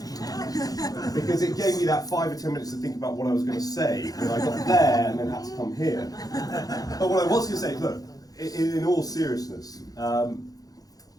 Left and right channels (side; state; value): right; late; 0.18 ms